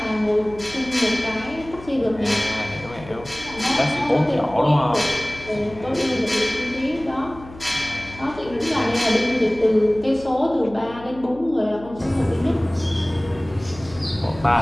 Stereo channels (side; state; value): left; noise; hum, 18 dB below the sound